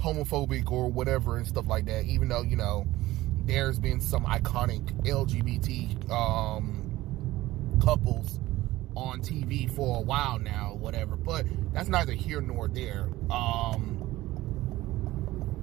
or whatever and stuff like that, even though, you know, there's been some iconic LGBT couples on TV for a while now, whatever, but that's neither here nor there.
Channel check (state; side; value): quieter; left; 17.1 dB